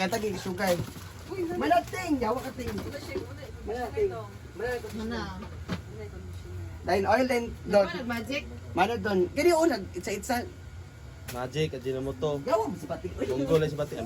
sugar. Malating. Yawa ka ting. Malating. Mana? Dahil oil din doon. Ano, magic? Mana doon. Kaya yung unag, itsa-itsa. Magic, Ajinomoto. Yawa mo si Pati. Munggo lang si Bating.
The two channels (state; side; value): identical; both; correlation 1.00